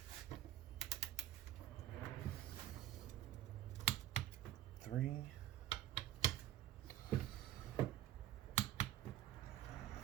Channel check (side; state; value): left; quieter; 12.8 dB